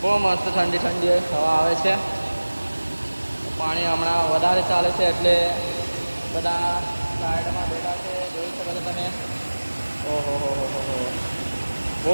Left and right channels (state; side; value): inverted; both; correlation -1.00